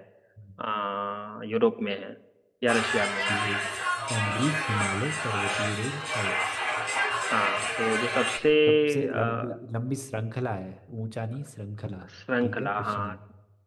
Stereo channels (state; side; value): identical; both; correlation 1.00